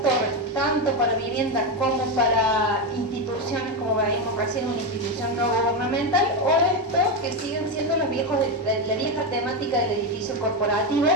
torres, tanto para viviendas como para instituciones, como veíamos recién, una institución no gubernamental, o esto que siguen siendo la vieja temática del edificio corporativo.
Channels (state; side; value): normal; both; correlation 0.11